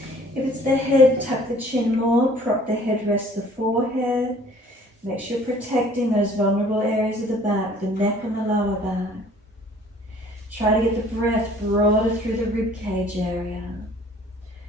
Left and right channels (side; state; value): both; normal; correlation 0.54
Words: If it's the head, tuck the chin more, prop the head, rest the forehead. Make sure you're protecting those vulnerable areas of the back, the neck and the lower back. Try to get the breath broader through the rib cage area.